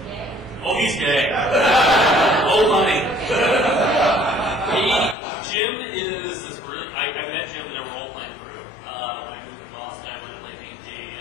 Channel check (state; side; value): drops out; right; at 5.2 s